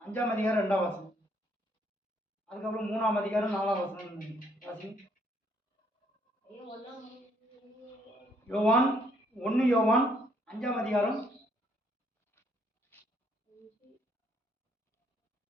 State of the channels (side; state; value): both; normal; correlation 0.68